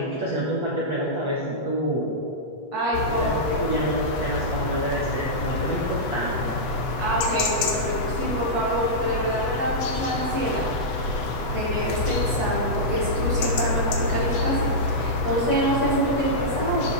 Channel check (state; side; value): late; right; 8.1 ms